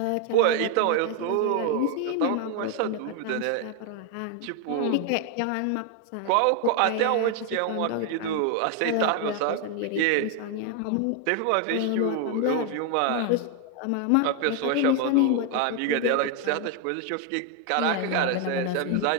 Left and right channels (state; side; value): different; both; correlation 0.01